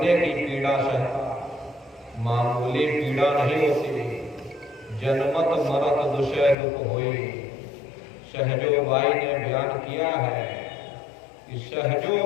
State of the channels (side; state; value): right; drops out; at 6.6 s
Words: की पीड़ा सहता मामूली पीड़ा नहीं होती। जनमत मरत दुषय दुख होई। सहजो बाई ने बयान किया है कि